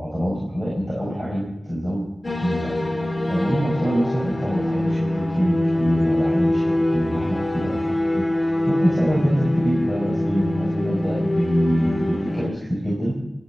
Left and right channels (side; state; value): both; normal; correlation 0.97